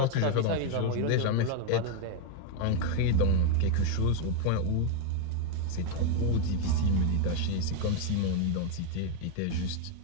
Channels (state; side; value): different; both; correlation 0.01